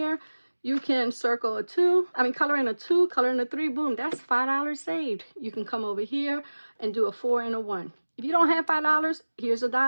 you can circle a 2, color in a 2, color in a 3, boom, that's $5 saved. You can come over here and do a 4 and a 1. If you don't have $5, here's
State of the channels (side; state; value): both; inverted; correlation -1.00